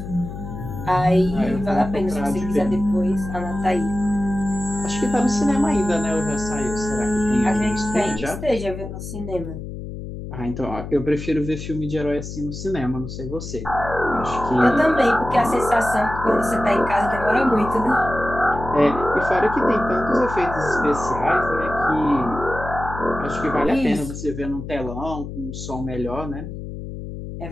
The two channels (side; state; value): left; noise; hum, 9 dB below the sound